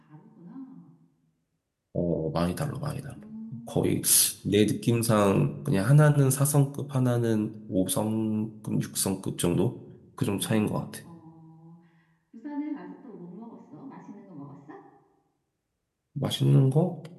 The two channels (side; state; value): both; identical; correlation 1.00